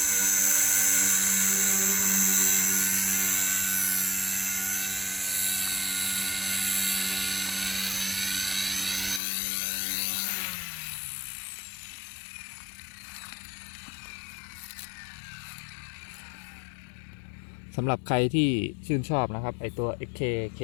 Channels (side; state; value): right; drops out; at 9.2 s